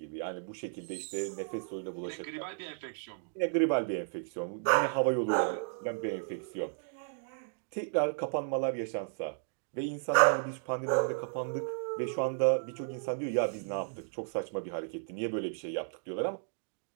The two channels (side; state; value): left; silent; digital silence